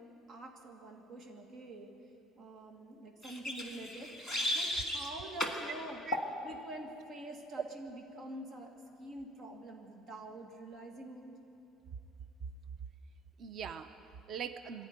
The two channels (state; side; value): normal; both; correlation 0.53